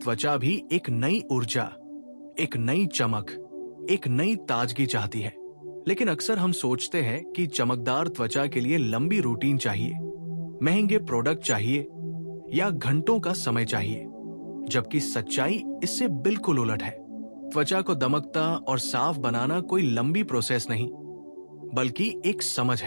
भी एक नई ऊर्जा, एक नई चमक, एक नई ताजगी चाहती है। लेकिन अक्सर हम सोचते हैं कि चमकदार त्वचा के लिए लंबी रूटीन चाहिए, महंगे प्रोडक्ट चाहिए या घंटों का समय चाहिए, जबकि सच्चाई इससे बिल्कुल उलट है। त्वचा को दमकता और साफ बनाना कोई लंबी प्रोसेस नहीं, बल्कि एक समझ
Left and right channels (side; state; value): both; inverted; correlation -1.00